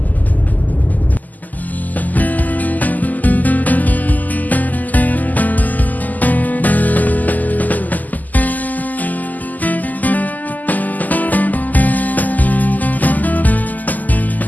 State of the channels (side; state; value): right; late; 0.082 ms